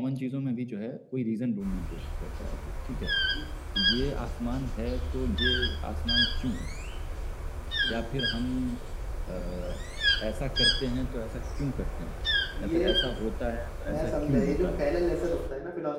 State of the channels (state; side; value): identical; both; correlation 1.00